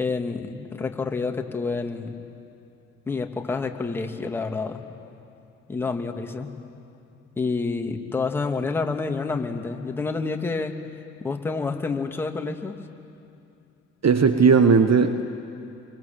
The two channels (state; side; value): normal; both; correlation 0.38